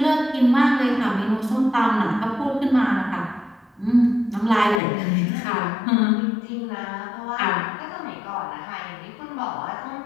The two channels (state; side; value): drops out; right; at 4.8 s